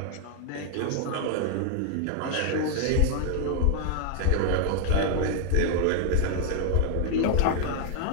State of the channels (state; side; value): different; both; correlation 0.00